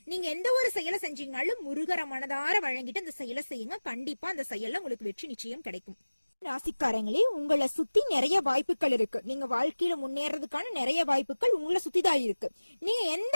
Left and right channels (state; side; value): inverted; both; correlation -1.00